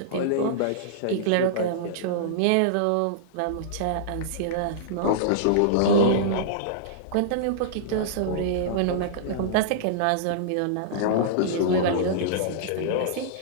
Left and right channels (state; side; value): different; both; correlation -0.02